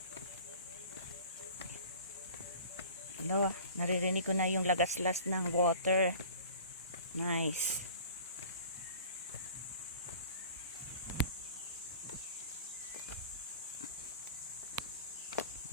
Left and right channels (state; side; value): inverted; both; correlation -0.44